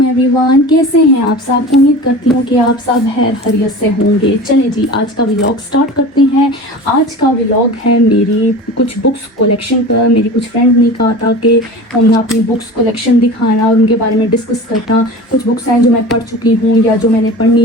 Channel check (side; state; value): both; normal; correlation 0.35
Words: एवरीवन, कैसे हैं आप सब। उम्मीद करती हूँ कि आप सब खैरियत से होंगे। चलें जी, आज का व्लॉग स्टार्ट करते हैं। आज का व्लॉग है मेरी कुछ बुक्स कलेक्शन पर। मेरी कुछ फ्रेंड ने कहा था कि हमने अपनी बुक्स कलेक्शन दिखाना और उनके बारे में डिस्कस करना। कुछ बुक्स हैं जो मैं पढ़ चुकी हूँ या जो मैंने